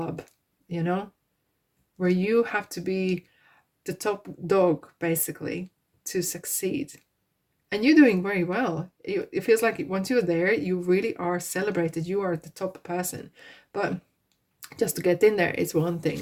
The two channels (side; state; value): both; identical; correlation 1.00